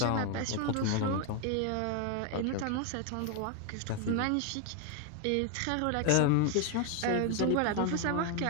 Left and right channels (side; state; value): both; different; correlation 0.01